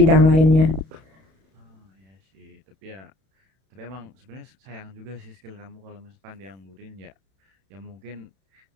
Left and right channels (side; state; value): left; late; 31 ms